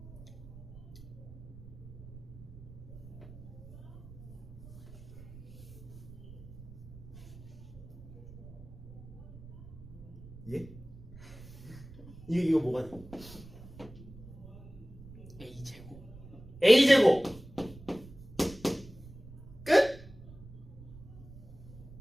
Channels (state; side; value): noise; right; rumble, 16 dB below the sound